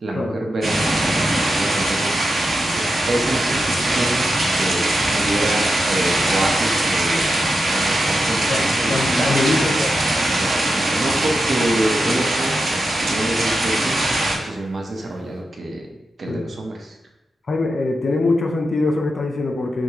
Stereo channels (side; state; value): both; normal; correlation 0.88